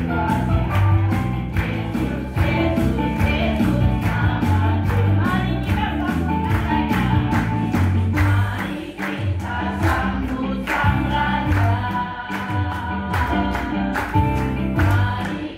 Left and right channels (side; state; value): both; identical; correlation 1.00